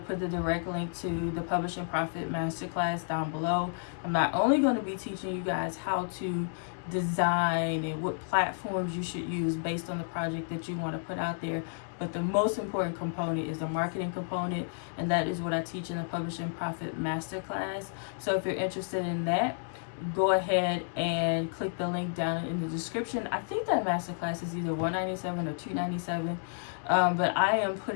put the direct link to the Publishing Profit Masterclass down below. I'm not only going to be teaching you guys how to design and what platforms you should use based on the project that you want to put out there, but the most important component is the marketing component, and that is what I teach in the Publishing Profit Masterclass. So if you're interested in that, go ahead and click the link down in the description. I think that masterclass is either $197 or $297, but I am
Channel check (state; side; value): silent; right; digital silence